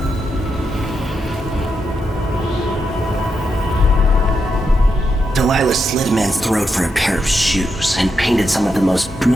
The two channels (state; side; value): normal; both; correlation 0.84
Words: Delilah slit a man's throat for a pair of shoes and painted some of the most